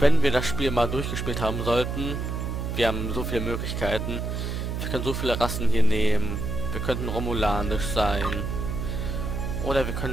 wir das Spiel mal durchgespielt haben sollten, wir haben so viele Möglichkeiten, wir können so viele Rassen hier nehmen, wir könnten romulanisch sein oder wir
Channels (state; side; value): noise; right; hum, 3 dB below the sound